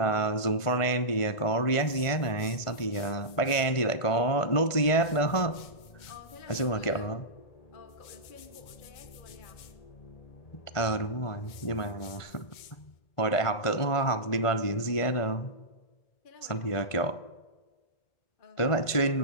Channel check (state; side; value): late; right; 1.5 ms